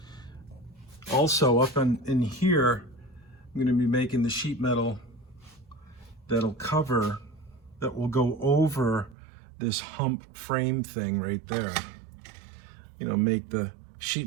also up in here, I'm going to be making the sheet metal that will go over this hump frame thing right there. Make the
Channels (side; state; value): left; drops out; at 9.2 s